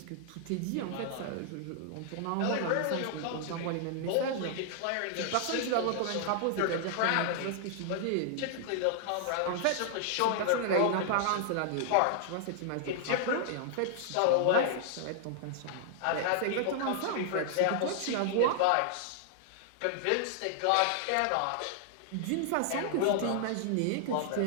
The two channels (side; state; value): both; different; correlation -0.01